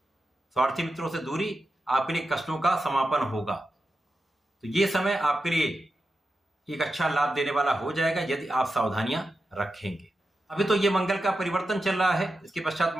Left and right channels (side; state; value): both; normal; correlation 0.90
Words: स्वार्थी मित्रों से दूरी आपके लिए कष्टों का समापन होगा। तो ये समय आपके लिए एक अच्छा लाभ देने वाला हो जाएगा यदि आप सावधानियां रखेंगे। अभी तो ये मंगल का परिवर्तन चल रहा है, इसके पश्चात